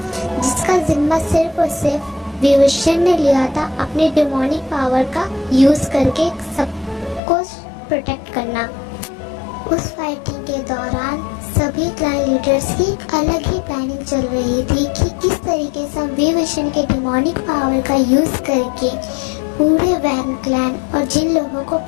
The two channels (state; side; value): drops out; right; at 7.2 s